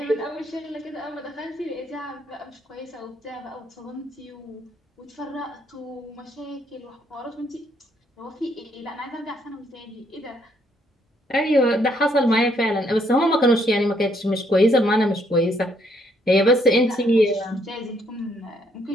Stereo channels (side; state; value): both; normal; correlation 0.70